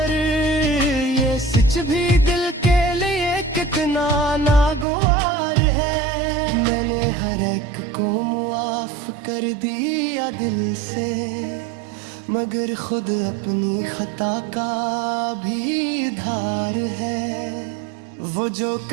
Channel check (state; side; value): drops out; left; at 4.9 s